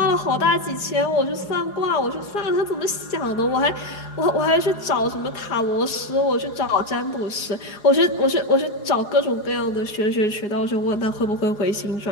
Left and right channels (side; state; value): right; late; 4.8 ms